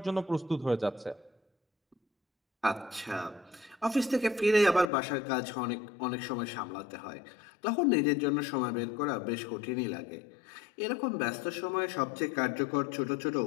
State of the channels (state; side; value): drops out; right; at 4.9 s